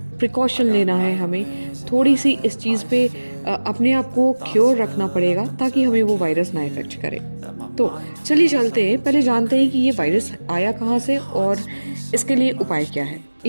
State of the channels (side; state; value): both; inverted; correlation -1.00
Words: प्रिकॉशन लेना है हमें, थोड़ी सी इस चीज़ पे अपने आप को क्योर रखना पड़ेगा ताकि हमें वो वायरस ना इफेक्ट करे। तो चलिए चलते हैं, पहले जानते हैं कि ये वायरस आया कहाँ से और इसके लिए उपाय क्या है।